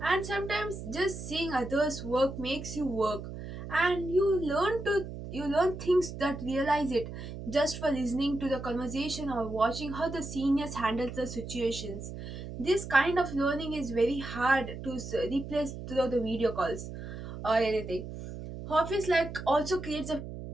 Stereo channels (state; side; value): noise; right; hum, 9 dB below the sound